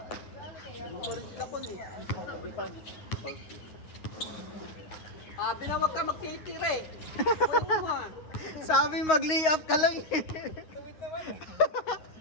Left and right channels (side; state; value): right; late; 9.5 ms